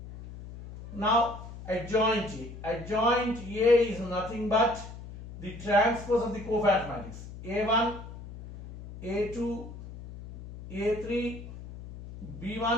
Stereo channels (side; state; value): left; noise; hum, 13 dB below the sound